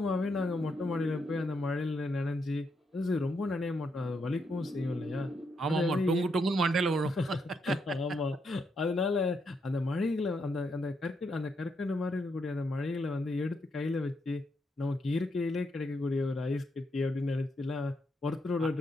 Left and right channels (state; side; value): normal; both; correlation 0.79